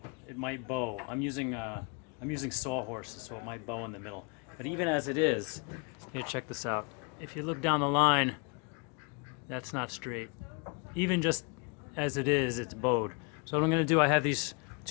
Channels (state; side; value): quieter; right; 33.7 dB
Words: it might bow. I'm using sawhorses, so it might bow in the middle. But even as it is, here, check this out. If you look down the line, that's not straight. Even just as it is, it's bowed. So what I'm going to do, I have these